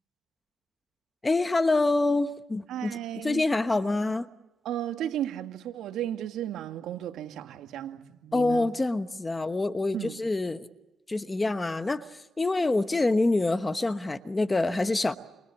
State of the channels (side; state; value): both; normal; correlation 0.92